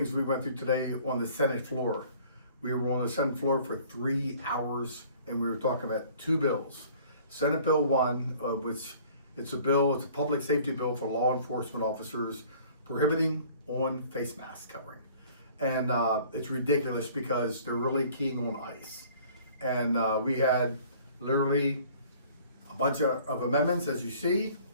we went through today on the Senate floor. We were on the Senate floor for 3 hours, and we were talking about two bills. Senate Bill 1, which it's a public safety bill for law enforcement officers prohibiting on face mask covering. And it's ridiculous because they're really keying on ICE. And we had literally a bunch of amendments, as you see,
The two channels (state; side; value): inverted; both; correlation -0.52